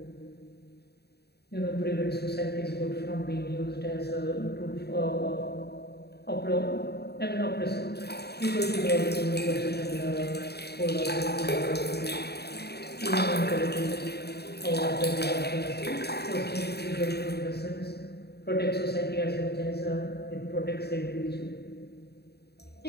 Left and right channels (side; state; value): right; late; 0.47 ms